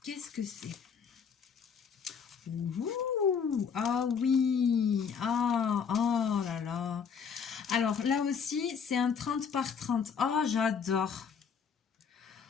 qu'est-ce que c'est? Ah oui, oh là là. Alors, là aussi, c'est un 30 par 30. Oh, j'adore.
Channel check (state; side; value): quieter; right; 6.5 dB